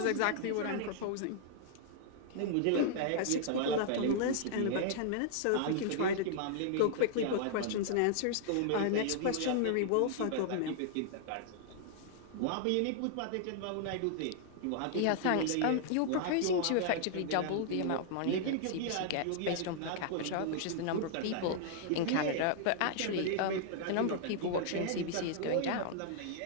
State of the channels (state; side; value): different; both; correlation -0.01